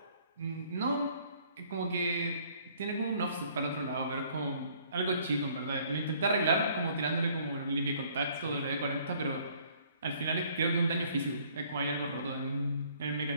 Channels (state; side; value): inverted; both; correlation -0.60